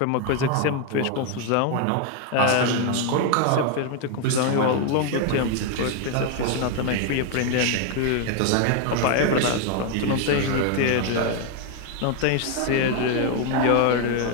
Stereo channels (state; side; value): different; both; correlation 0.01